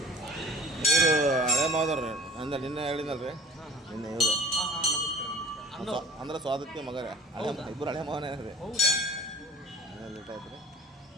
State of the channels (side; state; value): both; normal; correlation 0.48